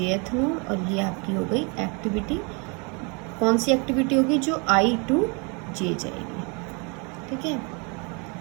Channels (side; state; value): left; quieter; 32.6 dB